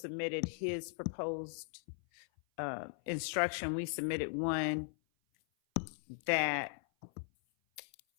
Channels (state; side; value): silent; right; 52 dB below the other